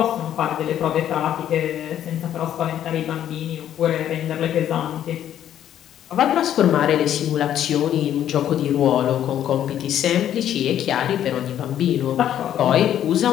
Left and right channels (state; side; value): quieter; right; 10.8 dB